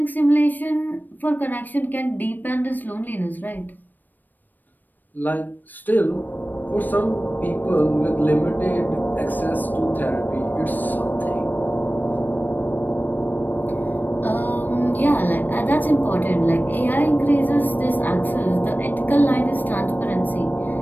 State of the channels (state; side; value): late; right; 0.089 ms